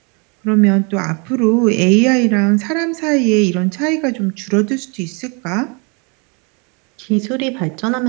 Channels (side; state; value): left; quieter; 33.0 dB